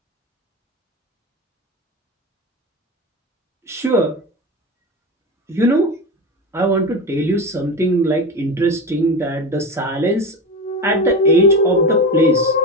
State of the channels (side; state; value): both; normal; correlation 0.23